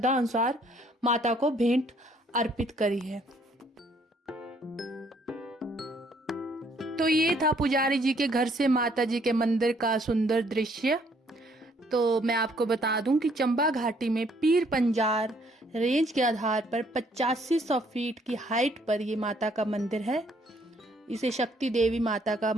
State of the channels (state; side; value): normal; both; correlation 0.65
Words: अनुसार माता को भेंट अर्पित करी है। तो ये था पुजारी जी के घर से माता जी के मंदिर का सुंदर दृश्य। तो मैं आपको बता दूं कि चंबा घाटी में पीर पंजार रेंज के आधार पर 8500 फीट की हाइट पर ये माता का मंदिर है। इसे शक्ति देवी माता का